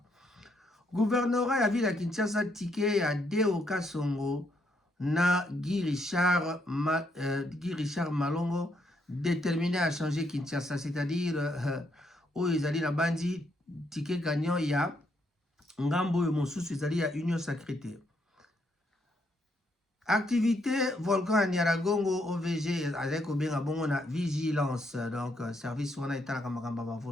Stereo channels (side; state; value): both; normal; correlation 0.75